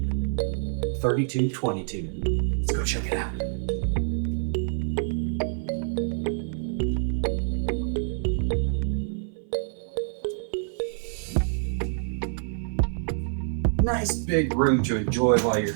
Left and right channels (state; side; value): silent; left; 57 dB below the other